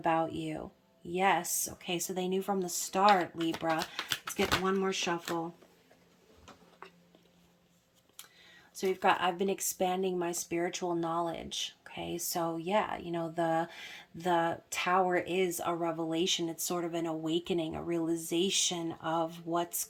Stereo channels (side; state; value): both; identical; correlation 1.00